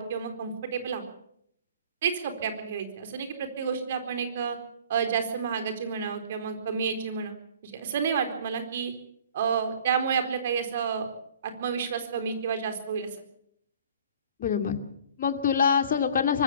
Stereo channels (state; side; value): inverted; both; correlation -0.50